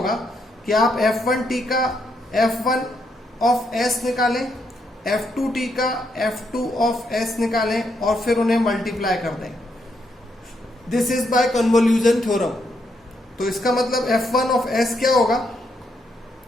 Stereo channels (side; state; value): both; normal; correlation 0.77